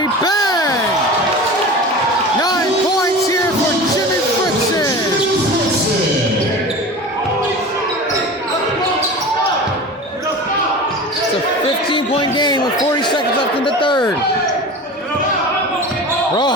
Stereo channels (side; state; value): both; normal; correlation 0.34